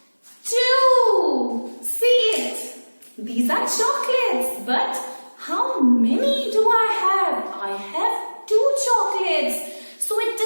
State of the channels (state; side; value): inverted; both; correlation -1.00